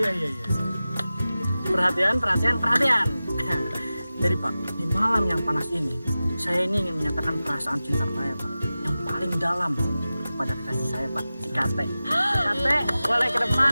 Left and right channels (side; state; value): both; inverted; correlation -0.95